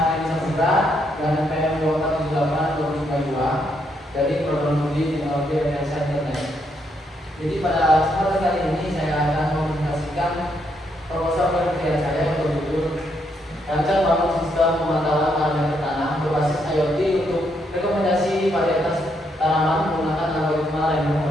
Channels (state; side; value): normal; both; correlation 0.76